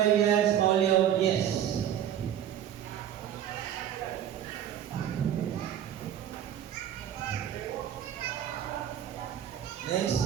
yes. Maulion, yes.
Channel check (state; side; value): quieter; left; 10.3 dB